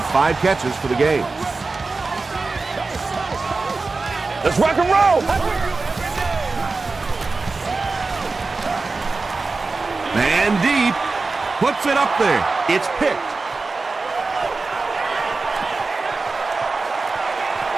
5 catches for the game. Let's rock and roll. Man deep. Puts it up there. It's picked.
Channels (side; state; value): left; quieter; 3.9 dB